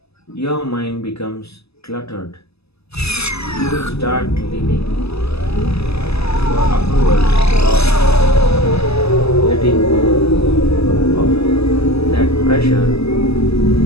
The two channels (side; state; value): right; late; 0.79 ms